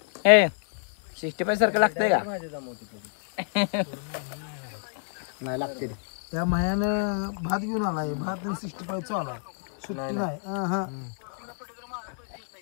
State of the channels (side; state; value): right; silent; 59 dB below the other